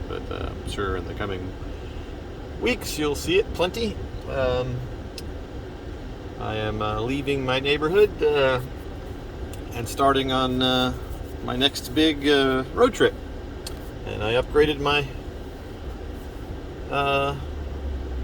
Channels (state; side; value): identical; both; correlation 1.00